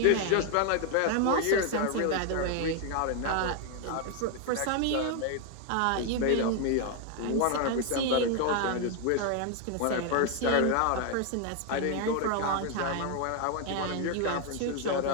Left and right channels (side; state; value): both; different; correlation 0.01